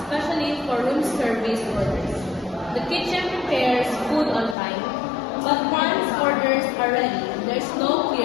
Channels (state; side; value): drops out; right; at 4.5 s